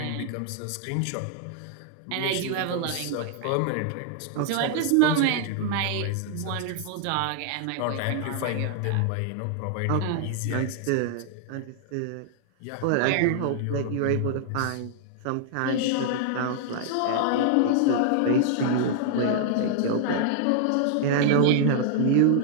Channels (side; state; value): both; different; correlation 0.00